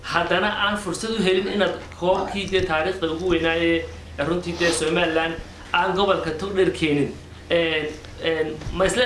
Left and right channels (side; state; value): both; identical; correlation 1.00